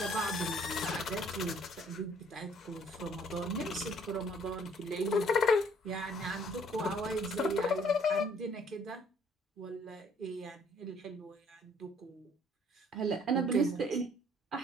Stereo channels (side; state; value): both; normal; correlation 0.60